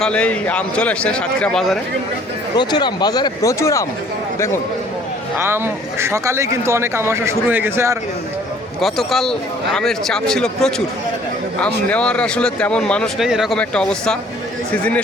আম চলে এসছে সাতক্ষীরা বাজারে। প্রচুর আম বাজারে, প্রচুর আম দেখুন। আম সকালেই কিন্তু অনেক আম আসা শুরু হয়ে গেছে। আর গতকাল আমের চাপ ছিল প্রচুর, আম নেওয়ার আসলে তেমন মানুষ নেই, এরকম একটা অবস্থা। সিজনের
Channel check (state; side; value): normal; both; correlation 0.56